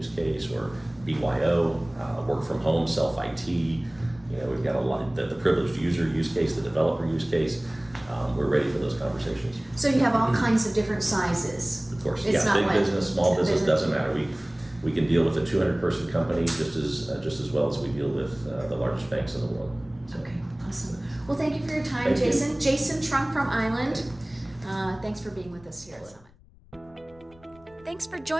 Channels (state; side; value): noise; left; rumble, 27 dB below the sound